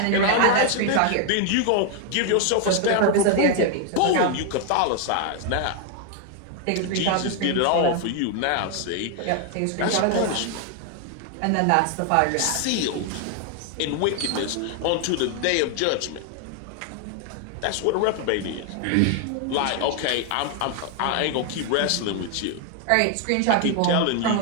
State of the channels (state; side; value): different; both; correlation 0.00